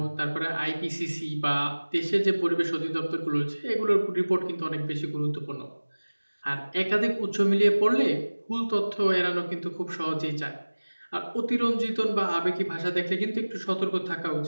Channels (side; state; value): both; inverted; correlation -1.00